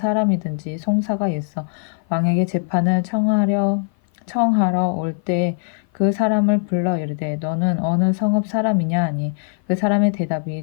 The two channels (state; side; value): silent; right; 55 dB below the other